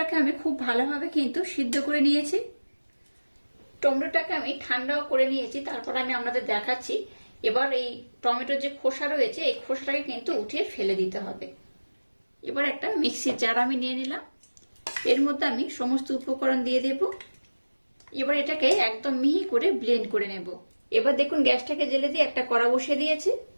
আমি খুব ভালোভাবে কিন্তু সিদ্ধ করে নিয়েছি। টমেটোটাকে আমি ঠান্ডাও করে নিয়েছি, তারপর আমি আপনাদের দেখাচ্ছি। এবার এই টমেটোর যে খোসা রয়েছে এই খোসাটাকে কিন্তু উঠিয়ে ফেলে দিতে হবে। এবার একটা মিক্সির জার আমি নিয়ে নিলাম, এর মধ্যে আমি সমস্ত উপকরণ দিয়ে দেব। এবার এটাকে একদম মিহি করে ব্লেন্ড করে নেব। এবার দেখুন গ্যাসটাকে জেলে দিয়ে একটা কড়া বসিয়ে দিয়েছি।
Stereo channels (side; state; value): both; inverted; correlation -1.00